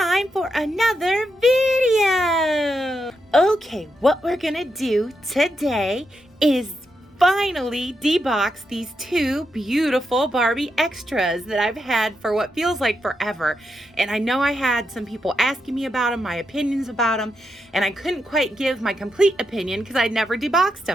time for another video. Okay, what we're gonna do today is finally debox these two beautiful Barbie extras that I've had for what feels like forever. And I know I had some people asking me about them, my opinions about them, and I couldn't quite give my complete opinion because I'd never deboxed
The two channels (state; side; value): normal; both; correlation 0.84